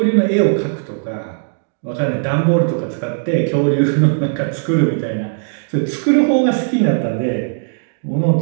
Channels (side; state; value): left; silent; digital silence